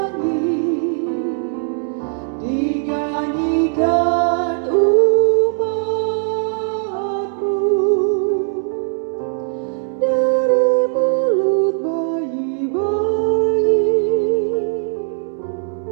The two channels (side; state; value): left; silent; 65 dB below the other